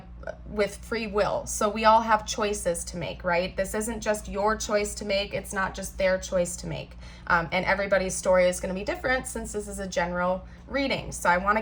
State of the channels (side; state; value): both; identical; correlation 1.00